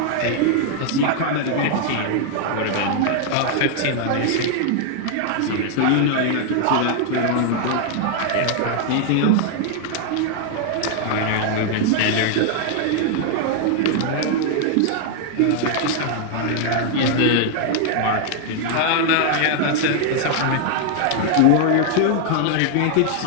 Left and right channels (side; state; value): both; different; correlation 0.00